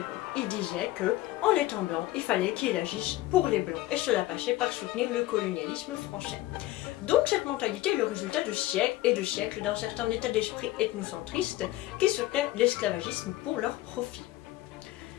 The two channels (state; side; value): quieter; right; 16.4 dB